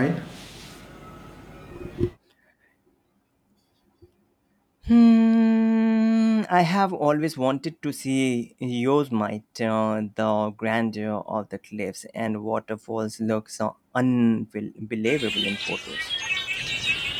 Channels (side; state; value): both; identical; correlation 1.00